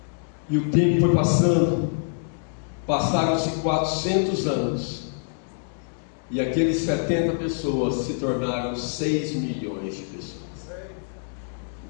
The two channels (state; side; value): silent; right; digital silence